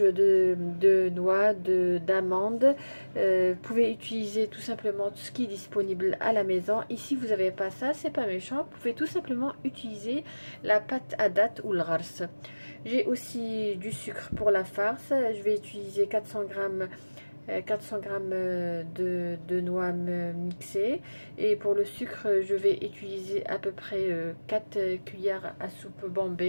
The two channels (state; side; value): inverted; both; correlation -1.00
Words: noix, d'amandes. Vous pouvez utiliser tout simplement tout ce qui est disponible à la maison. Ici, vous n'avez pas ça, c'est pas méchant. Vous pouvez tout simplement utiliser la pâte à date ou le rars. J'ai aussi du sucre pour la farce. Je vais utiliser 400 g de noix mixées, et pour le sucre je vais utiliser à peu près 4 cuillères à soupe